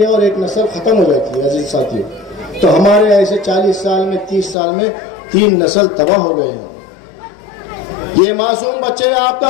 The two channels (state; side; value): drops out; right; at 4.5 s